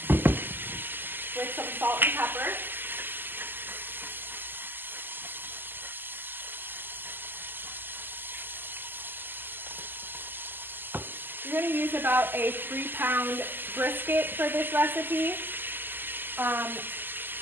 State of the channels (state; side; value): late; left; 0.093 ms